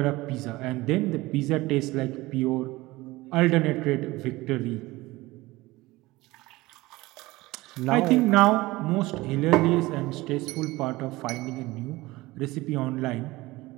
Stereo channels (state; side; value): quieter; left; 19.9 dB